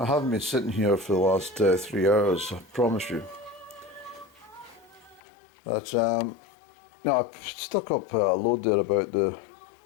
haven't been sitting here for the last 3 hours, I promise you. But no, I've stuck up a load there about the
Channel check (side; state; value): right; drops out; at 5.2 s